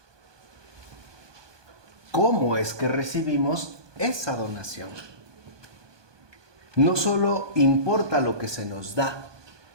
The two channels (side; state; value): left; late; 1.2 ms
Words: ¿Cómo es que recibimos esa donación? No solo importa lo que se nos da,